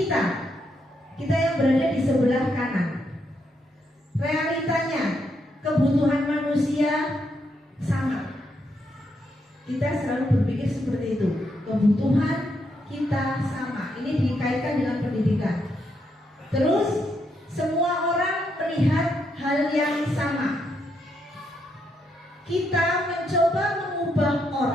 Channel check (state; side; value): normal; both; correlation 0.79